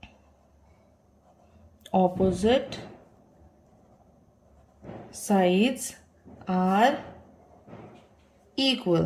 opposite sides are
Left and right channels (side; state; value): both; identical; correlation 1.00